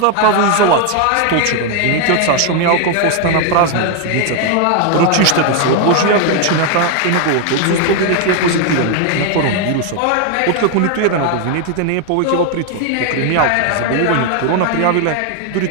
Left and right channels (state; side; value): different; both; correlation 0.01